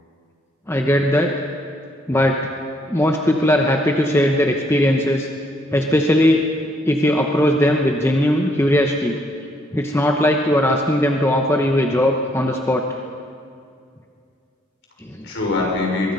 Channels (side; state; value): both; normal; correlation 0.69